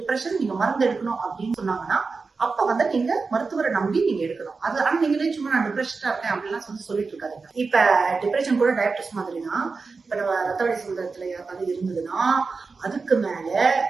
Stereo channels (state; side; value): quieter; left; 4.4 dB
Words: நீங்க மருந்து எடுக்கணும் அப்படின்னு சொன்னாங்கன்னா அப்ப நீங்க மருத்துவரை நம்பி நீங்க எடுக்கணும். அது ஆனா நீங்களே சும்மா நான் டிப்ரெஷனா இருக்கேன் அப்படிலாம் சொல்லிட்டு இருக்காதீங்க. இப்ப டிப்ரெஷன் கூட டயபிட்டிஸ் மாதிரி தான். இப்ப நம்ம ரத்த வழி சுந்தரத்துல யாருக்காவது இருந்ததுன்னா அதுக்கு மேல